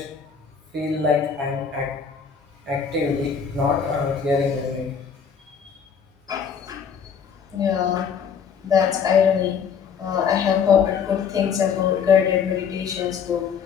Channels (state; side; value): quieter; right; 6.8 dB